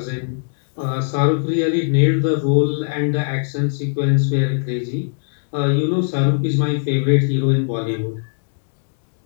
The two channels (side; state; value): right; silent; digital silence